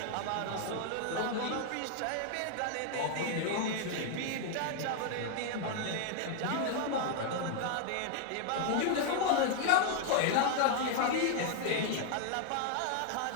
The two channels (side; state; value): both; different; correlation 0.00